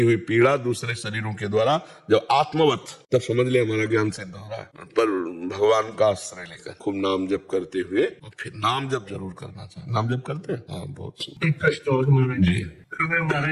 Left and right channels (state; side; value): identical; both; correlation 1.00